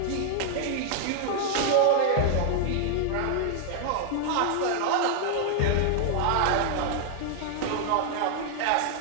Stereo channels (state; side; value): different; both; correlation 0.00